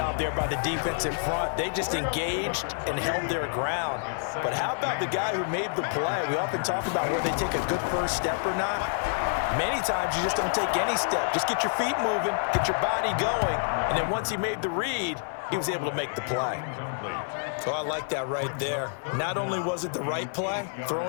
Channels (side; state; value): right; silent; digital silence